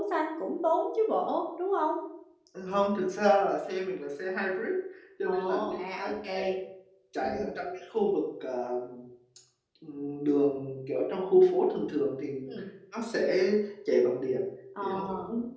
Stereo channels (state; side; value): identical; both; correlation 1.00